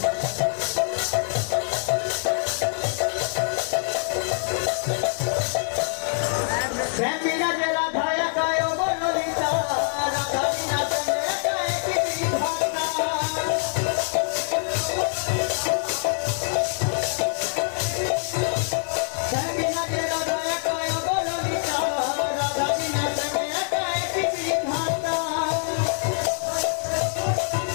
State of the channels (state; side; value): silent; right; digital silence